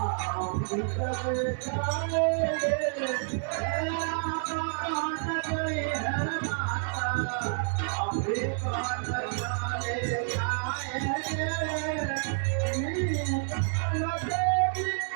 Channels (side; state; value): left; silent; digital silence